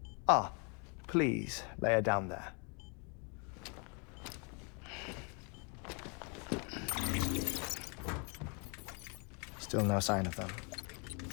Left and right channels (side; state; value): right; quieter; 35.2 dB